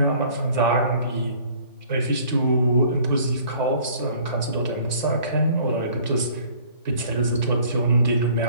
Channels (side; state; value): both; inverted; correlation -0.54